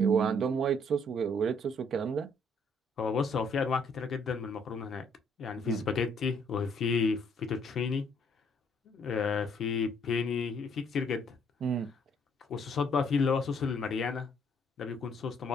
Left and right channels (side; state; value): both; normal; correlation 0.66